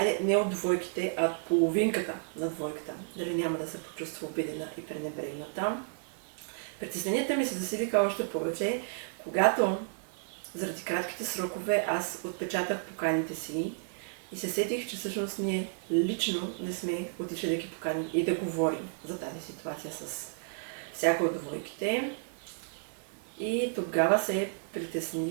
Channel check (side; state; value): left; silent; digital silence